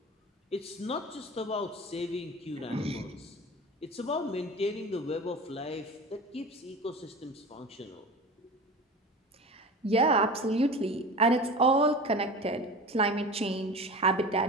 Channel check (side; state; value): both; normal; correlation 0.33